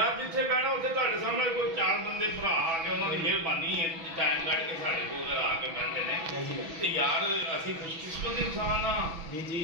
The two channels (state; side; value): late; left; 6.1 ms